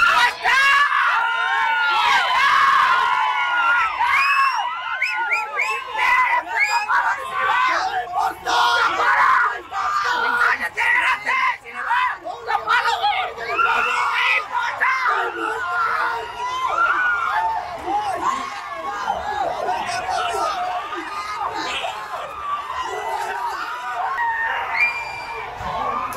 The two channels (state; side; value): identical; both; correlation 1.00